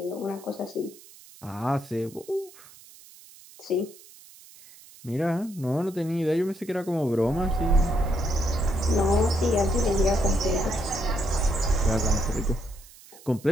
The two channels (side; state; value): right; noise; hiss, 22 dB below the sound